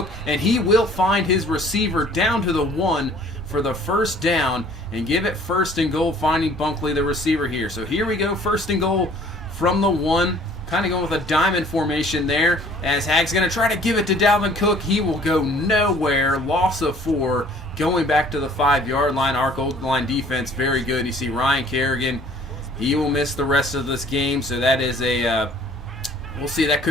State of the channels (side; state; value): both; normal; correlation 0.54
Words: and he will find his receiver down to the 1 for the first down and give it 1st and goal, finding Bunkley, the receiver here. So here we go, 1st and goal from the 1. Kind of going with a diamond formation there, as Hag's going to try to give it to Dalvin Cook. He will go nowhere. Loss of 4. Going back to the 5-yard line. Our goal line defense, very good. You see Ryan Kerrigan. He will miss the rest of this game, so that is we'll see, that